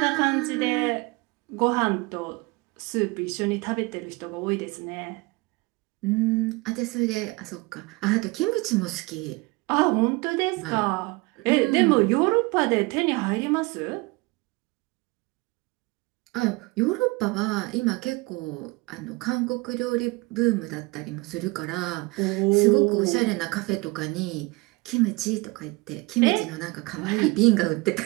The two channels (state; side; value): quieter; left; 24.7 dB